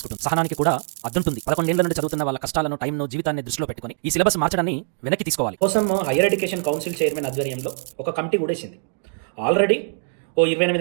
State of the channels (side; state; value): left; silent; digital silence